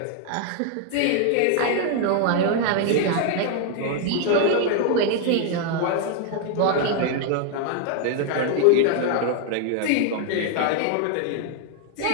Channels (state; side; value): different; both; correlation 0.00